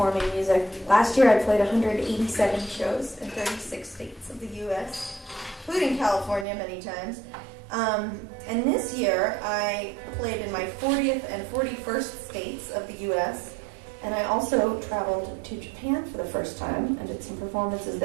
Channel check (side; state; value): left; drops out; at 6.5 s